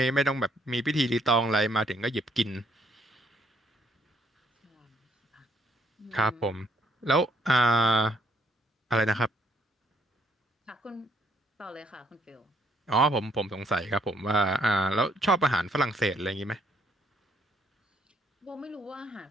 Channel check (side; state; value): both; normal; correlation 0.68